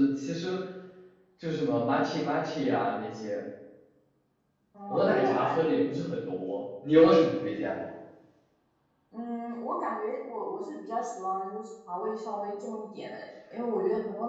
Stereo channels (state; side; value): identical; both; correlation 1.00